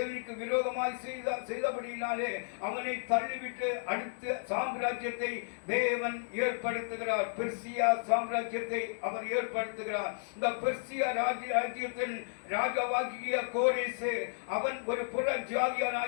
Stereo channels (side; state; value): right; silent; digital silence